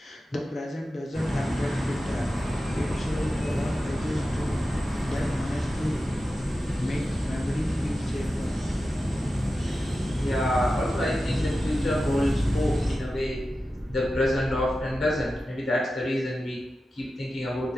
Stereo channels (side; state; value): both; normal; correlation 0.93